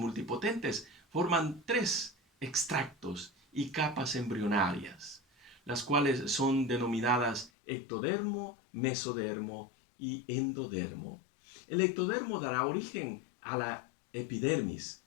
forman tres extractos y capas embrionarias, las cuales son denominadas ectodermo, mesodermo y endodermo. El ectodermo dará origen a la epidermis,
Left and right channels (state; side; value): drops out; right; at 7.5 s